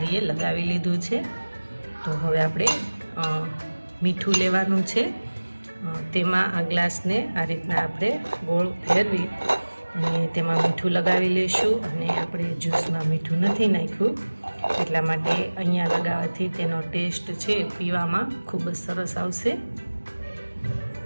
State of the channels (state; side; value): inverted; both; correlation -1.00